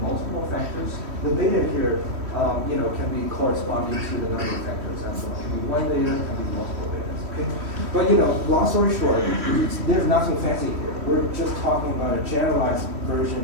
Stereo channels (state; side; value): late; left; 3.1 ms